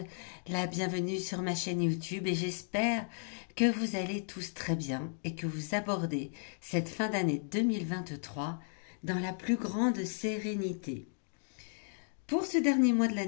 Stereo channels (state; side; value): silent; right; digital silence